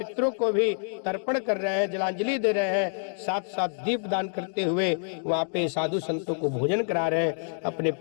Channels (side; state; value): right; silent; digital silence